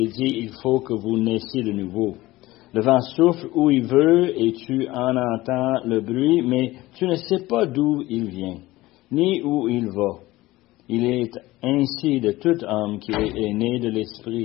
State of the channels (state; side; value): quieter; right; 18.2 dB